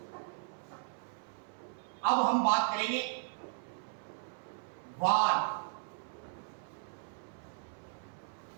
अब हम बात करेंगे वार।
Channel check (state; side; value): silent; left; 53 dB below the other